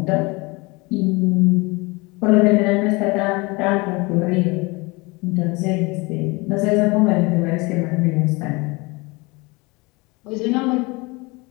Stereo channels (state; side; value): quieter; right; 25.7 dB